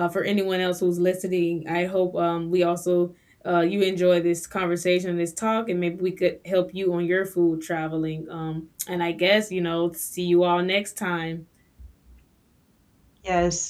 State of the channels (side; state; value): both; identical; correlation 1.00